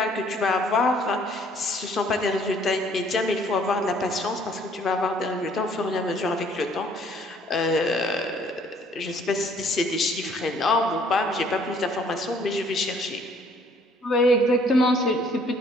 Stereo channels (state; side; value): normal; both; correlation 0.60